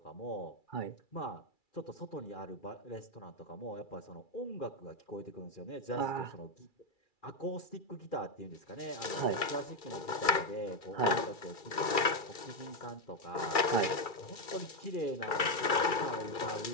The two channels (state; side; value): late; right; 2.3 ms